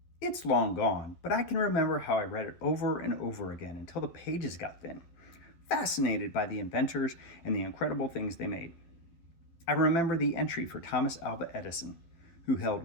It's long gone, but I can remember how I read it over and over again until the pages got thin, fascinated by the inventors and the incredible things they made. I remember the entry for Thomas Alva Edison, who held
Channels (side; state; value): right; late; 12 ms